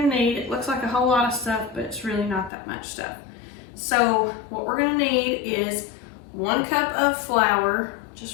to need. It looks like a whole lot of stuff, but it's really not that much stuff. So what we're going to need is 1 cup of flour,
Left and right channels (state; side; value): drops out; right; at 2.5 s